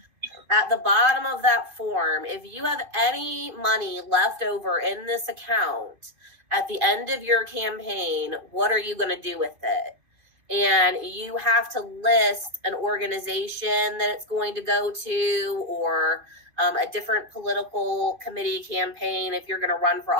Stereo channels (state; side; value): late; left; 2.5 ms